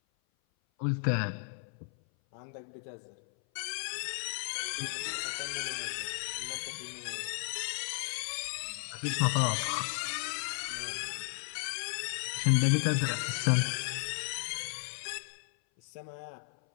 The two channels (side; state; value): right; silent; 55 dB below the other